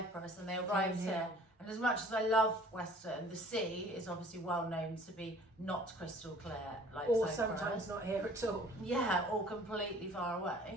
and they arrived here. And as much as I love Western, the sea is obviously well known to be not crystal clear, like or Cyprus. Sometimes not here at all. Yeah, or completely far away.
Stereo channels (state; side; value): normal; both; correlation 0.51